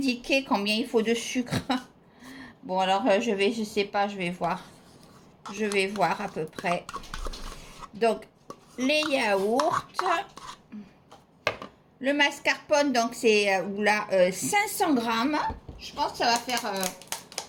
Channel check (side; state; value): both; identical; correlation 1.00